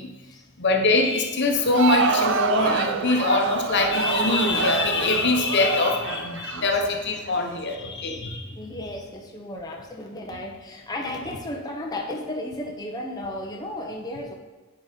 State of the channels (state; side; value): normal; both; correlation -0.04